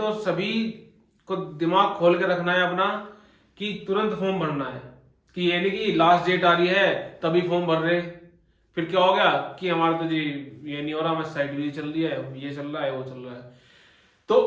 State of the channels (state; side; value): identical; both; correlation 1.00